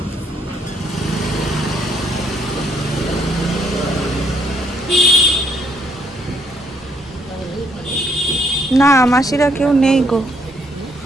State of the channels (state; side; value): normal; both; correlation 0.70